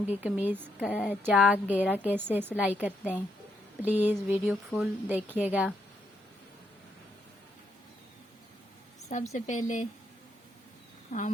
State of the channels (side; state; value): both; normal; correlation 0.77